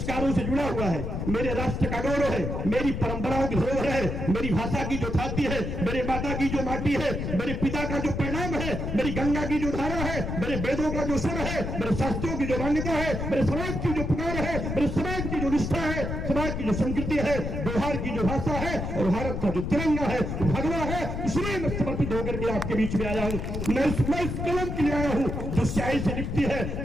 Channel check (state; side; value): noise; left; rumble, 3 dB below the sound